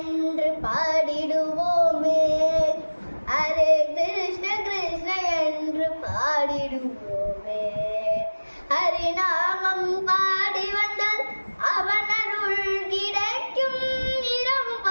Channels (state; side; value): inverted; both; correlation -1.00